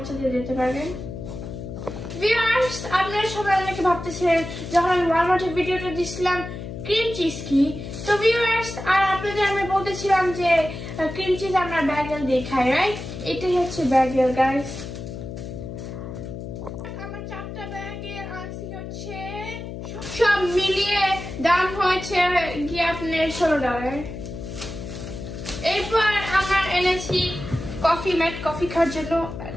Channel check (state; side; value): noise; left; hum, 9 dB below the sound